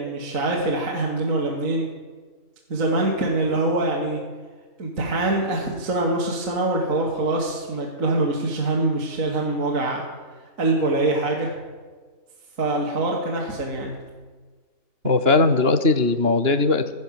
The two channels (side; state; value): left; late; 2.9 ms